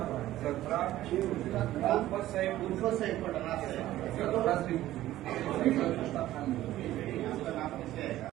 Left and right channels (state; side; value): quieter; left; 14.6 dB